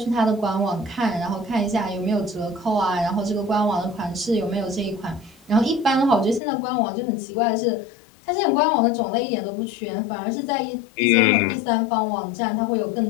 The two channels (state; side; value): drops out; right; at 6.4 s